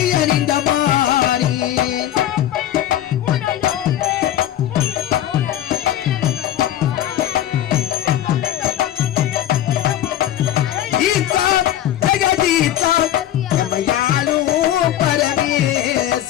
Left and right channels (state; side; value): quieter; right; 12.0 dB